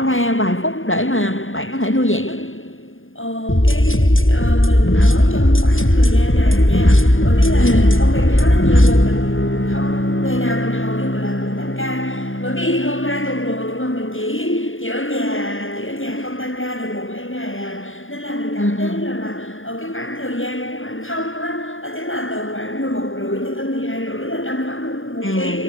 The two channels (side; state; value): right; late; 0.59 ms